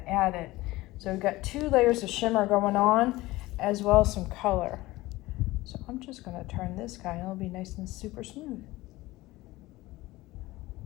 added. So we've got 2 layers of shimmer going on as well as some color. So I'm just going to turn this guy and it'll be nice and super smooth.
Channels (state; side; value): quieter; right; 18.9 dB